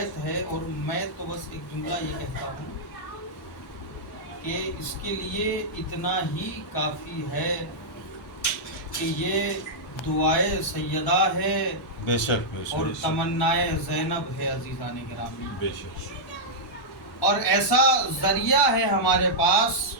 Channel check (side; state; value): both; normal; correlation -0.08